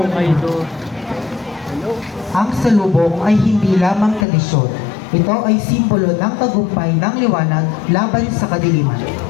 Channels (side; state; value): right; drops out; at 4.2 s